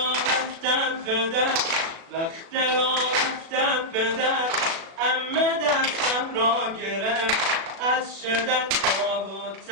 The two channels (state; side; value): late; left; 36 ms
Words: رفتم پدر، وقت را رفتم پدر، عمه دستم را گرفت، از شدت خواب و